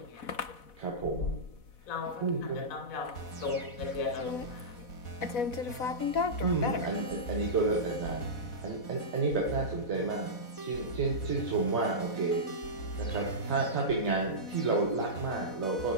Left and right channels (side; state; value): right; late; 4.1 ms